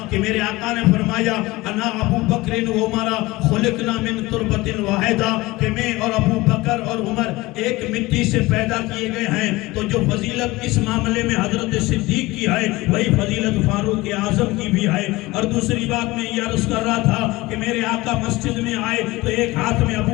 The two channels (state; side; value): quieter; right; 20.5 dB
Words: کہ میرے آقا نے فرمایا انا ابو بکر و عمر خلقنا من تربت واحدہ، کہ میں اور ابو بکر اور عمر ایک مٹی سے پیدا کیے گئے ہیں۔ تو جو فضیلت اس معاملے میں حضرت صدیق کی ہے وہی فضیلت فاروق اعظم کی بھی ہے۔ اور دوسری بات میں یہ عرض کر رہا تھا کہ میرے آقا مسجد میں آئے تو ایک ہاتھ میں